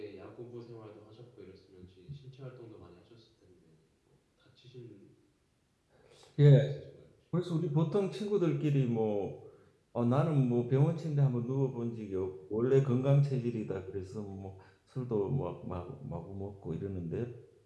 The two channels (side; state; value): both; identical; correlation 1.00